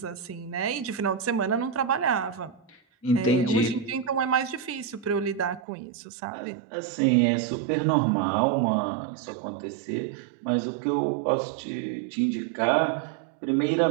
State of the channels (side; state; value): left; drops out; at 5.6 s